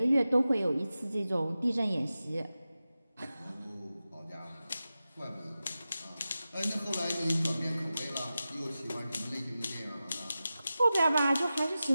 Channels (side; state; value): both; inverted; correlation -0.94